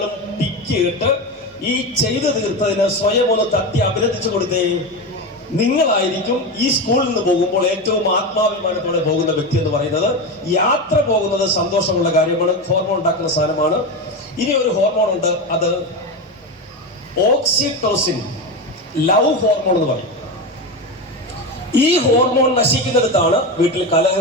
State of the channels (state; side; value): normal; both; correlation 0.18